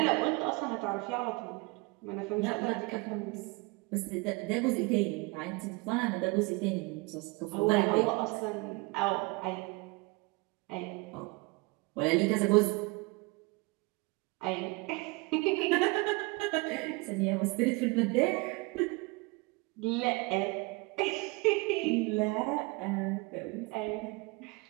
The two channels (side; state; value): left; quieter; 26.3 dB